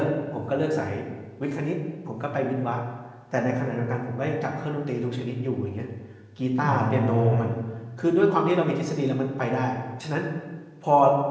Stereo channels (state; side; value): identical; both; correlation 1.00